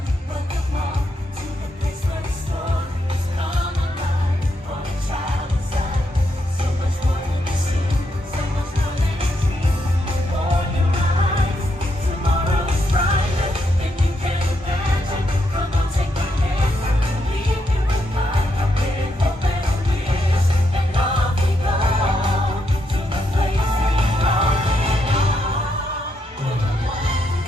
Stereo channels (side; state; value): both; normal; correlation 0.80